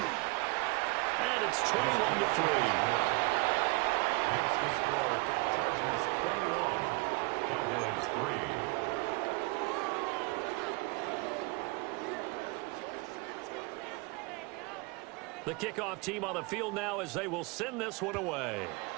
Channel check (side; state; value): left; quieter; 26.4 dB